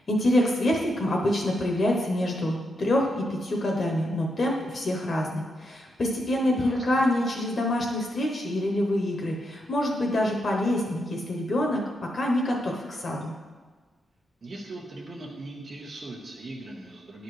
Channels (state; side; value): normal; both; correlation 0.82